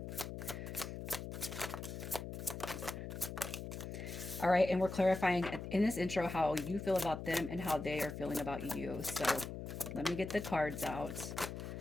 All right, and we're clarifying in this intro how you feel about them and how they are feeling about you. So let me get the cards out.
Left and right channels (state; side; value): noise; left; hum, 7 dB below the sound